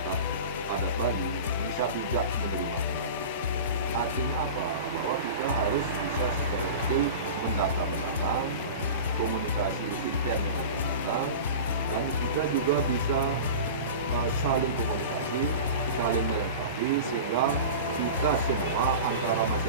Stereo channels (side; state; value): both; inverted; correlation -0.32